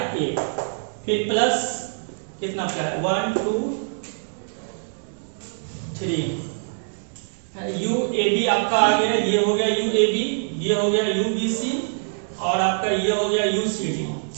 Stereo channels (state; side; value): silent; left; digital silence